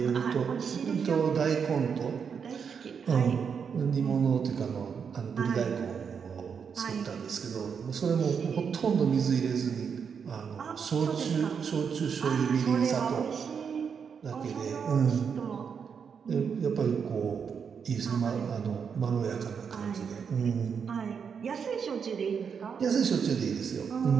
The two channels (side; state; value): left; quieter; 6.6 dB